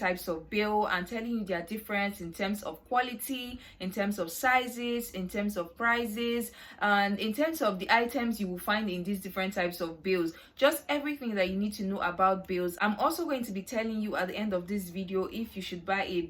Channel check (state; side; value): identical; both; correlation 1.00